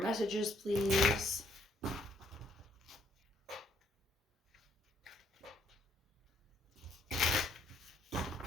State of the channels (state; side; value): normal; both; correlation 0.69